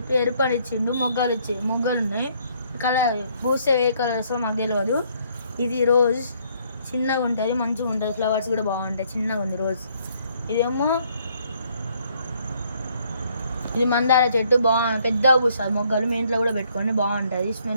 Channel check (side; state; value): both; inverted; correlation -0.67